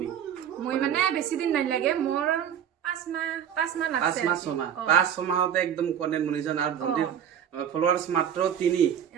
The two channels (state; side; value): quieter; left; 9.2 dB